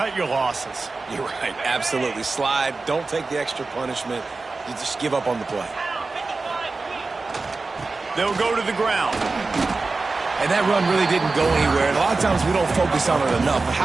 your losses. You're right, absolutely. Slide, don't take the extra punishment. You just give up on the play. They'll go to the ground. And that run really didn't go anywhere. And a lot of times we don't focus on it enough, but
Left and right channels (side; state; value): left; quieter; 3.8 dB